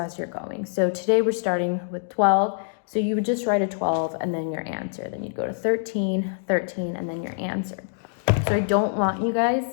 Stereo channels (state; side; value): silent; right; digital silence